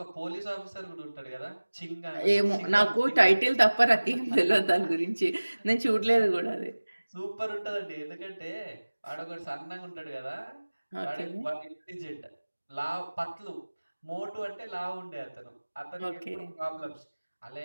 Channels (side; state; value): both; inverted; correlation -1.00